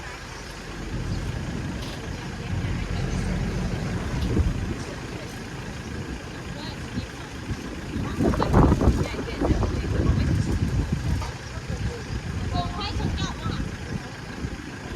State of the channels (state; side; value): identical; both; correlation 1.00